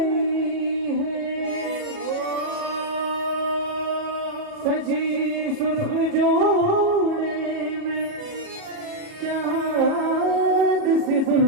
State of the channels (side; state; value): left; late; 37 ms